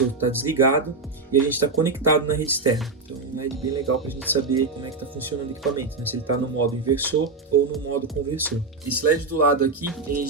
está desligado e a gente está conectado na rede externa. Então é um LED bem legal para a gente saber como é que está funcionando o equipamento, né? Se ele está no modo inversor ou no modo conversor. Esse LED do lado aqui, ele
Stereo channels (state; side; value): quieter; left; 3.9 dB